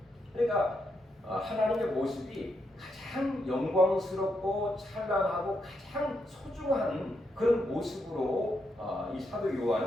그러니까 하나님의 모습이 가장 영광스럽고 찬란하고 가장 소중한 그런 모습으로 이 사도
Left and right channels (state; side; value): normal; both; correlation 0.81